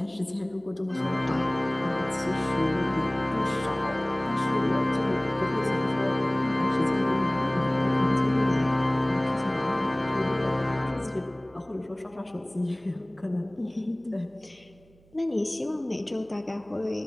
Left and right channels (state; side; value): noise; right; hum, 29 dB below the sound